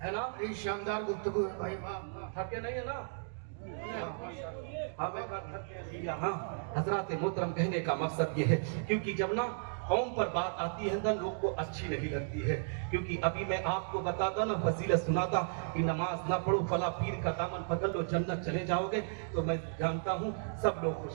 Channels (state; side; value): silent; left; digital silence